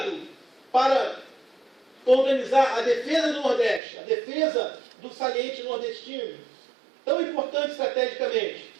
para organizar a defesa do Nordeste, a defesa do saliente nordestino, tão importante estrategicamente.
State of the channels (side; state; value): left; drops out; at 3.8 s